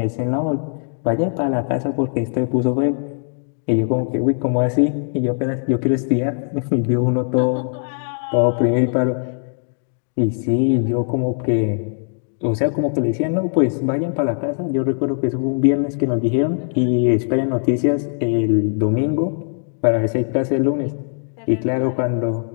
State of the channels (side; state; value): right; silent; digital silence